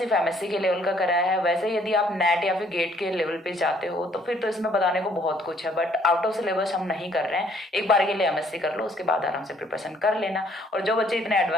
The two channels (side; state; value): both; normal; correlation 0.63